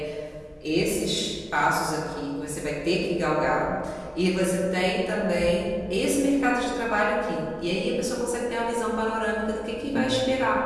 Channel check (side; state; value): both; identical; correlation 1.00